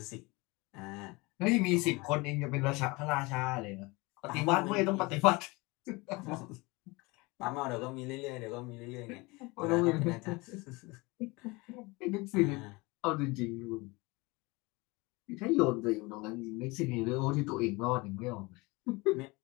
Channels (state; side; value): quieter; right; 24.6 dB